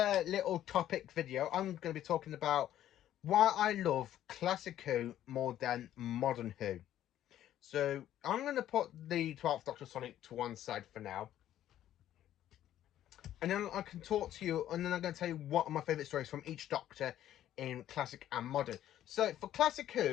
topic video, I'm going to be talking about why I love classic Who more than modern Who. So, I'm going to put the 12th Doctor Sonic to one side for now. And then I can talk to you, and then I'm going to tell you what are my favourite stories from each Doctor in classic and modern. So, for classic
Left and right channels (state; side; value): quieter; right; 12.0 dB